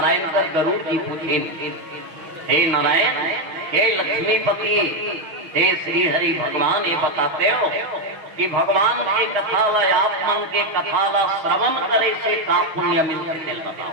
कर गरुड़ जी पूछे, हे नारायण, हे लक्ष्मीपति, हे श्री हरि भगवान, ये बताते हो कि भगवान के कथा ला, आप मन के कथा ला श्रवण करे से का पुण्य मिलते, दिल बताओ।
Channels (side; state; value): left; late; 6.2 ms